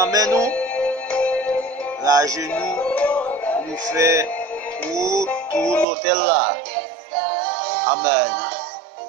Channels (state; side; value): drops out; left; at 5.9 s